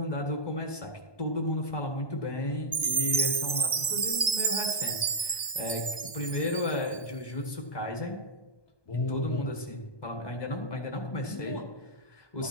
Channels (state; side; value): late; right; 1.2 ms